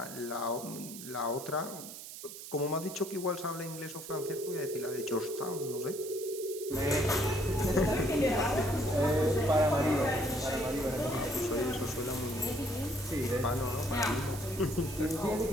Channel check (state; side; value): noise; right; hiss, 12 dB below the sound